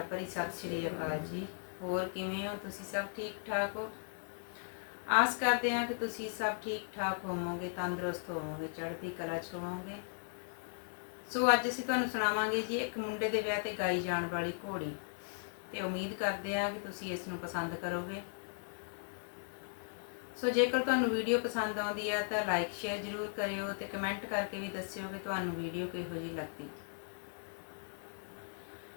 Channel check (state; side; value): silent; right; 53 dB below the other